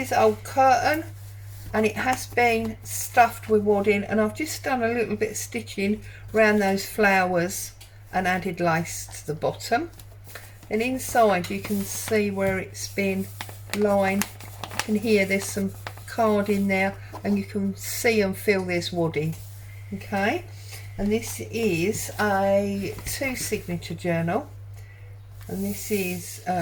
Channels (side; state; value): both; identical; correlation 1.00